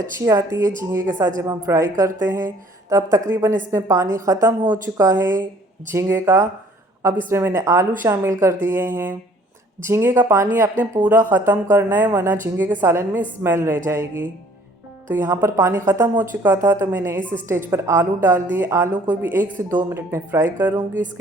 आती है झींगे के साथ जब हम फ्राई करते हैं। तो अब तकरीबन इसमें पानी ख़त्म हो चुका है झींगे का। अब इसमें मैंने आलू शामिल कर दिए हैं। झींगे का पानी आपने पूरा ख़त्म करना है वरना झींगे के सालन में स्मेल रह जाएगी। तो यहाँ पर पानी ख़त्म हो चुका था तो मैंने इस स्टेज पर आलू डाल दिए। आलू को भी 1 से 2 मिनट में फ्राई करूँगी।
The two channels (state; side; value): normal; both; correlation 0.57